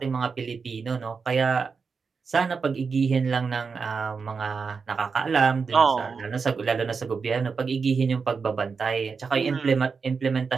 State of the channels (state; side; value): quieter; left; 5.2 dB